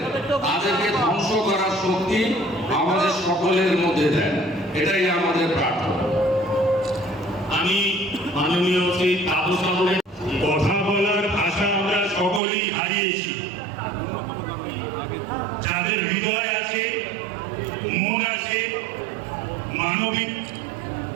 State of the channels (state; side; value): drops out; left; at 12.4 s